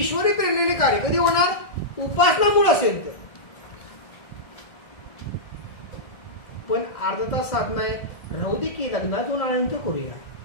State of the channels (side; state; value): right; late; 1.6 ms